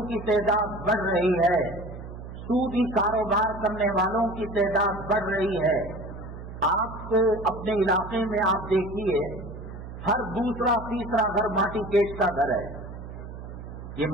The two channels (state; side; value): noise; right; hum, 11 dB below the sound